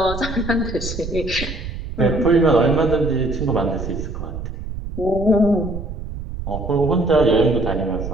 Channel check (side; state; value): right; noise; rumble, 7 dB below the sound